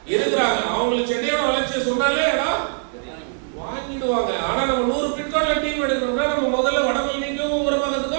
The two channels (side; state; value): left; silent; digital silence